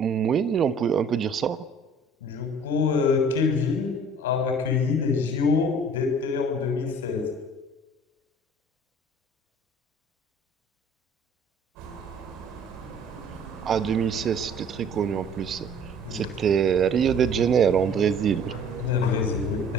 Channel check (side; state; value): both; normal; correlation 0.51